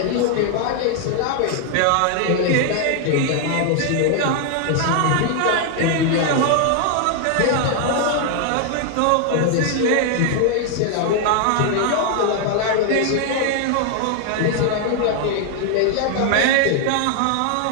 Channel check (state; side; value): different; both; correlation 0.00